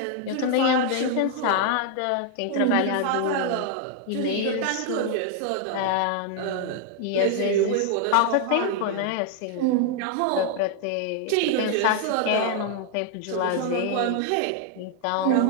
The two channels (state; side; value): different; both; correlation 0.00